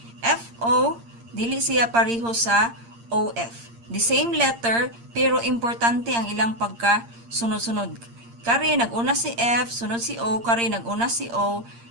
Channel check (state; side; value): late; left; 8.7 ms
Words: FO, dili siya pareho sa OF. The same letter, pero importante ang ilang pagkasunod-sunod. Kari, nag-una si F, sunod si O, kari, nag-una si O,